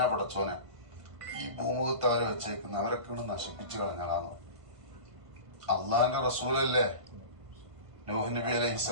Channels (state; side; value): late; left; 1.6 ms